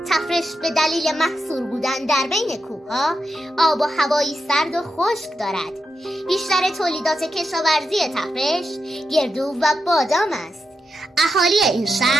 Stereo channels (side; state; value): both; normal; correlation 0.86